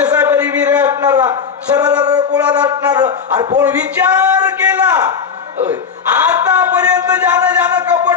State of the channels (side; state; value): right; quieter; 6.4 dB